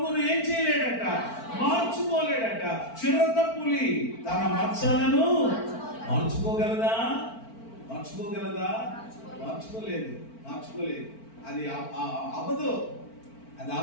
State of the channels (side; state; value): right; late; 4.4 ms